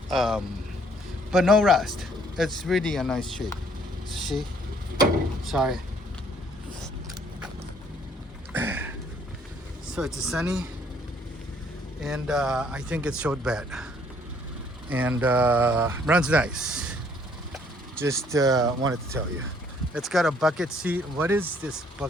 but no rust. It's really a nice shape. See, sorry. So it's a Sunny, and I think it's short bed, and runs nice. Just wanted to tell you. It's got a bucket seat. What is this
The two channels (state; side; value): normal; both; correlation 0.63